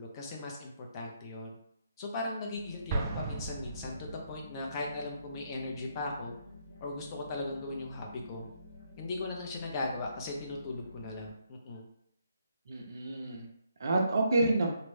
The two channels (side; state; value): both; inverted; correlation -0.74